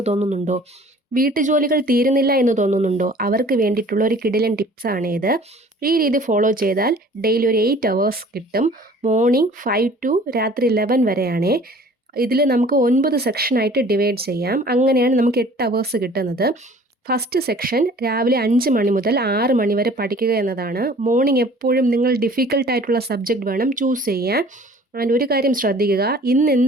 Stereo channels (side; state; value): both; normal; correlation 0.50